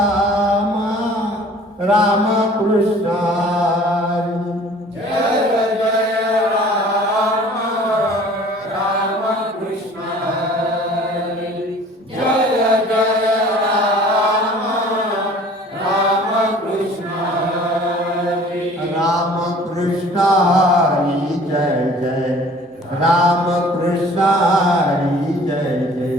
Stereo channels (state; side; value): normal; both; correlation 0.50